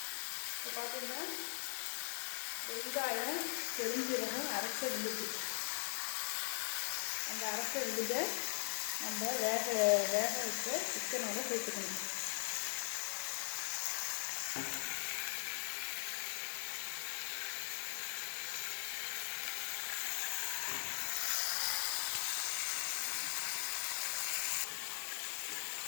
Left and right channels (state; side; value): silent; right; 51 dB below the other